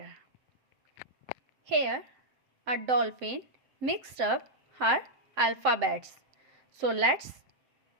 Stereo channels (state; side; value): late; left; 7.7 ms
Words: Here, a dolphin mixed up her alphabets. So let's